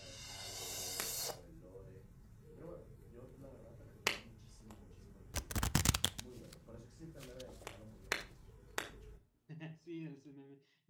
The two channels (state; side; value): identical; both; correlation 1.00